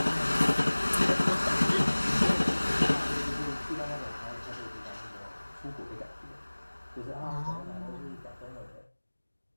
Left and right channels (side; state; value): both; inverted; correlation -1.00